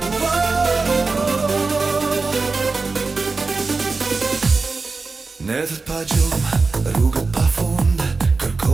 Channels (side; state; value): left; quieter; 4.1 dB